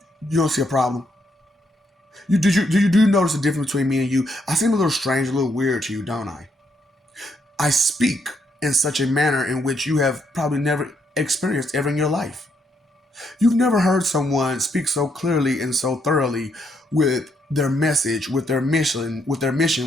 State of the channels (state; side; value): normal; both; correlation 0.75